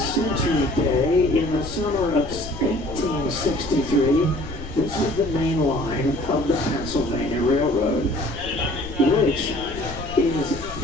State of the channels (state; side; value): noise; left; rumble, 14 dB below the sound